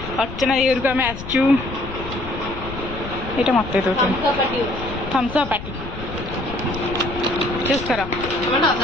अर्चना देवर को आम आसचु ये मत थम्स अप पार्टी चूज कर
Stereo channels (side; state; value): left; noise; rumble, 10 dB below the sound